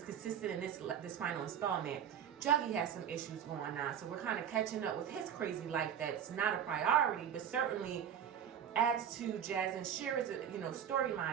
consistent in this final installment. Juggy has some issues going on, so we're kind of catching up with his crazy life that's not a priority, but certainly adds to Jazz and Shira's, you know,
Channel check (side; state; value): left; quieter; 8.9 dB